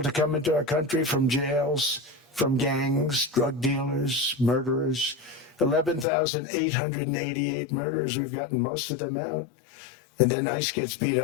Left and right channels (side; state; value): right; drops out; at 6.1 s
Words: to come into our country from jails, from gangs, drug dealers, murderers. 11,888 murderers. We've gotten most of them out. And then ICE gets beat